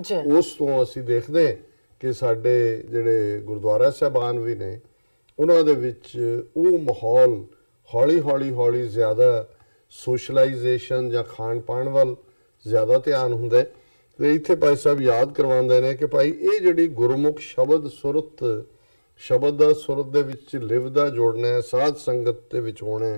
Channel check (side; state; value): both; inverted; correlation -1.00